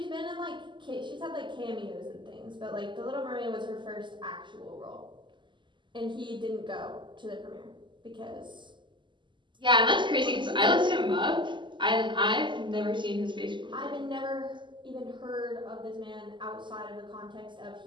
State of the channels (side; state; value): left; late; 0.23 ms